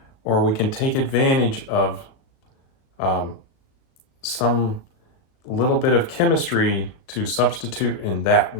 or we can take advantage of some little bit of chemistry to substitute in that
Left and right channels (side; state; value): right; late; 36 ms